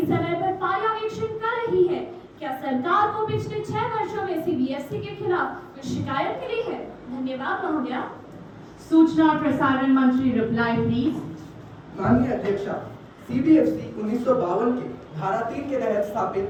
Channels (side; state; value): both; identical; correlation 1.00